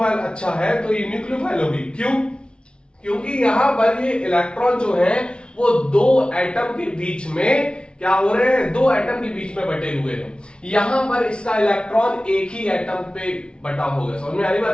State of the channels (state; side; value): late; right; 0.056 ms